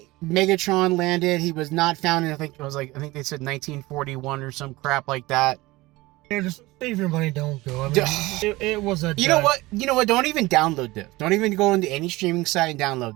landed, he was not found in, I think they said 1941 or some crap like that. Yeah, just save your money, don't go. I mean, it was a... You know what? Don't even download this. Don't even go into any streaming site and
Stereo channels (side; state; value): left; quieter; 20.3 dB